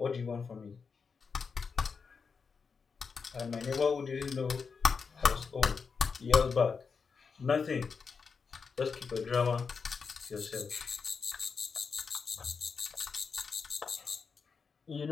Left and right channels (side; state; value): right; quieter; 5.4 dB